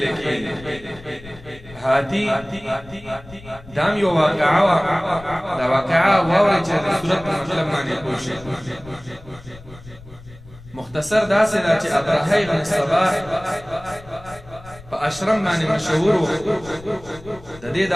کېږي. هاتي دام یو واقعه وا، دا واقعه واورئ چې د سورت په مطلب باندې پوه شئ. مختصر داسې ده چې ابرهه بن صباح په اشرم باندې مشهور و. د دې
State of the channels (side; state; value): left; noise; rumble, 19 dB below the sound